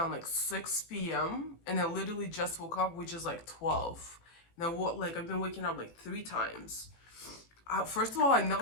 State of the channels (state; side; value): late; right; 18 ms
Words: 6 p.m. and I literally just woke up, which is 12. And I've been waking up three times. First of all, I